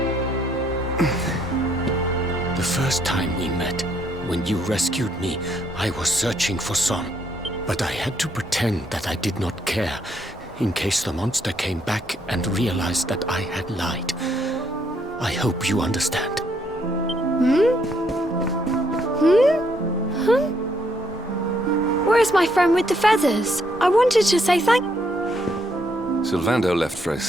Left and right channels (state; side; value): normal; both; correlation 0.72